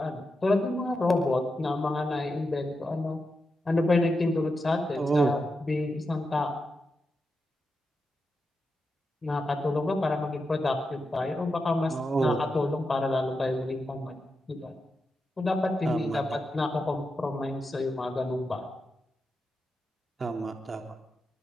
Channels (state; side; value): normal; both; correlation 0.88